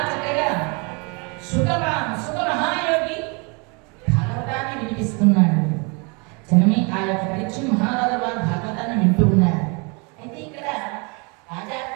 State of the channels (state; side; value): quieter; left; 31.7 dB